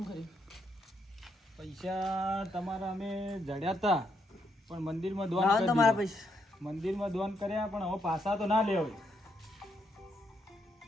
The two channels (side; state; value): both; normal; correlation 0.77